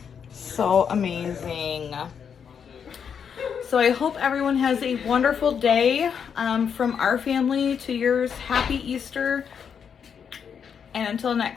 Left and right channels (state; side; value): quieter; right; 7.2 dB